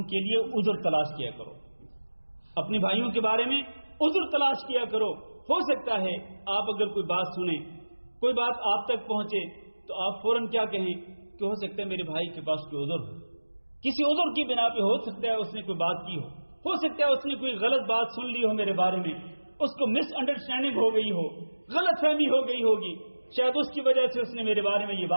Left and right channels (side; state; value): both; inverted; correlation -1.00